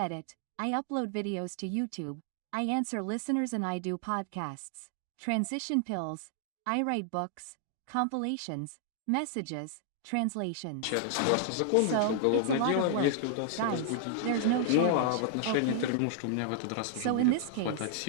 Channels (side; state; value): both; different; correlation -0.01